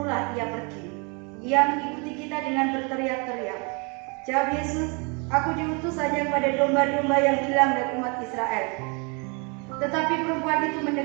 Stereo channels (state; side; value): quieter; left; 32.5 dB